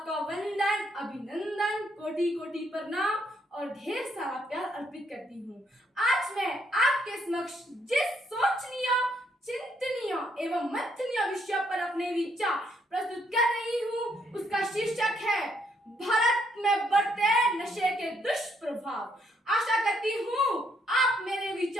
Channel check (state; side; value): normal; both; correlation 0.72